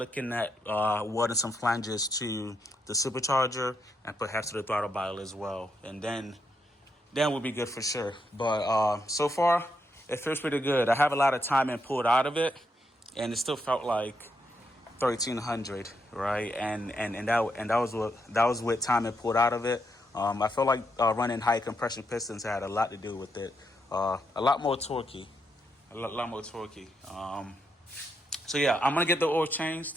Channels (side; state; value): both; normal; correlation 0.80